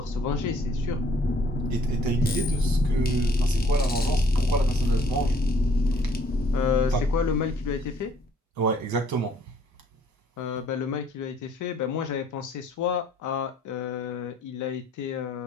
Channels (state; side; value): normal; both; correlation 0.61